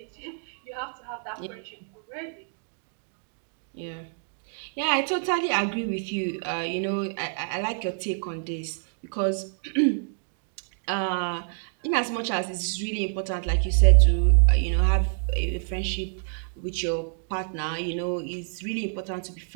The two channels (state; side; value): silent; left; digital silence